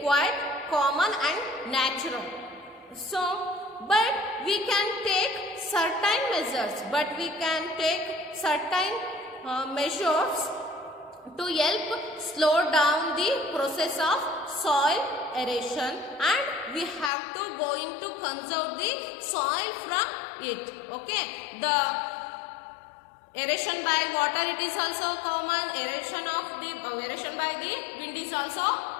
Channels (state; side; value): drops out; right; at 17.1 s